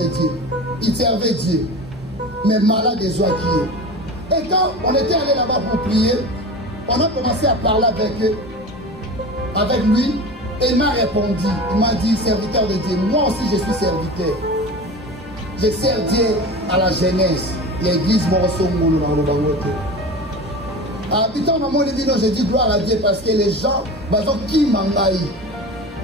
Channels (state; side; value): normal; both; correlation 0.32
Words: Dieu. Il servait Dieu. Mais malade des oies qui est. Et quand on était allé là-bas pour prier, on a commencé à parler avec lui. Et il m'a répondu. Il m'a dit, serviteur de Dieu. Moi aussi, je suis serviteur. Je sers Dieu à la jeunesse. L'église Morosomolo dans le Bangote. Habitant dans mon évident, je dis gloire à Dieu parce que les gens, qui m'engaillent.